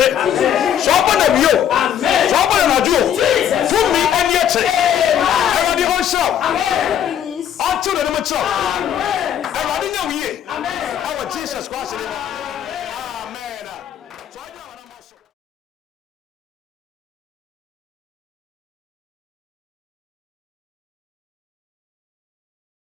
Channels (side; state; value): right; quieter; 9.7 dB